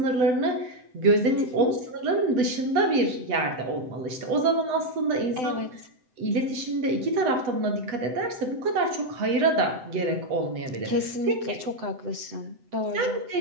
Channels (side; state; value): left; late; 7.9 ms